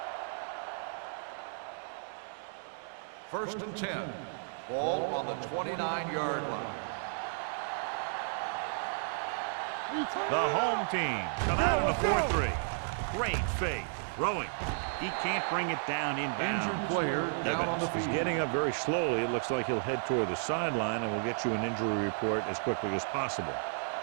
First and 10. Ball on the 29-yard line. Don't stop that motor. The home team come out in a 4-3. Great fake. Throwing. He can't bring it down inbounds. Evans is getting up very slowly. It looks like he'll head toward the sideline, and we'll get you an injury report as quickly as possible.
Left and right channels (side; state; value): left; silent; digital silence